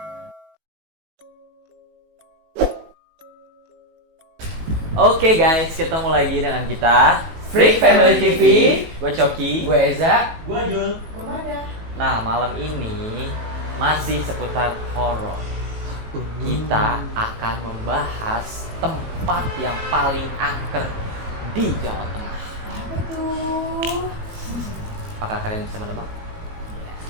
Oke guys, ketemu lagi dengan kita Freak Family TV. Gue Coki. Gue Eza. Gua Jul. Kemana? Nah, malam ini masih seputar horor. Kita akan membahas tempat yang paling angker di Jawa Tengah. Apa tuh? Apakah kalian bisa menebak?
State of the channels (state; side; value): late; left; 18 ms